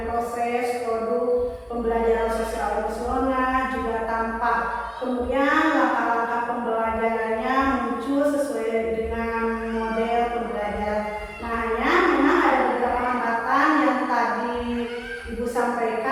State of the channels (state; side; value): identical; both; correlation 1.00